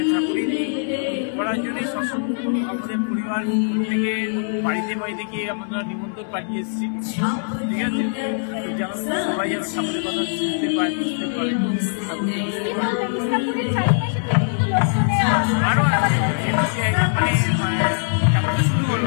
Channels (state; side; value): silent; right; digital silence